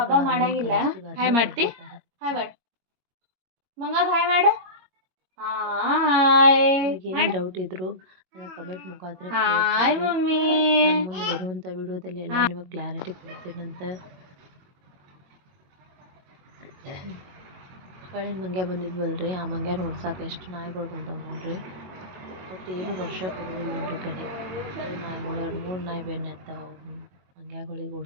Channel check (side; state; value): left; late; 22 ms